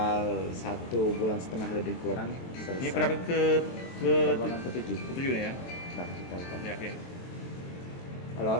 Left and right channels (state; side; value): late; right; 23 ms